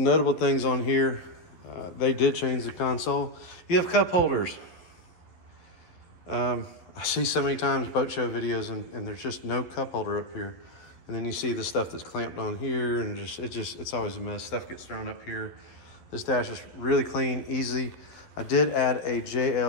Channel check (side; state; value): right; late; 11 ms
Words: notable things on here. They did change the console. You have cup holders. I see so many times boat show videos and there's just no cup holder up here. And then you see the stuff that's clamped on here, and it's always a mess. Stuff gets thrown up here. This dash is really clean, easy. I did add a